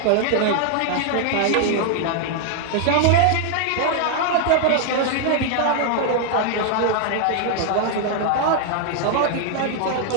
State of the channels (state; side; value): different; both; correlation 0.00